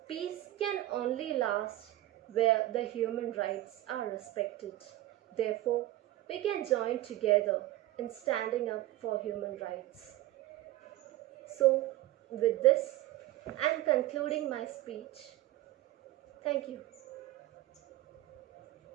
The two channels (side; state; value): left; quieter; 15.8 dB